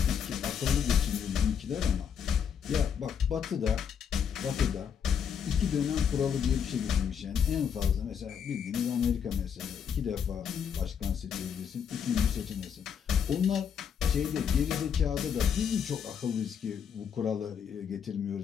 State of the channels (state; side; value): quieter; right; 7.6 dB